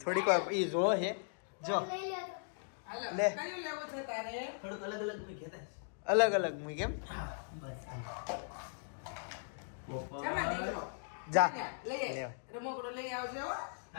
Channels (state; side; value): silent; right; digital silence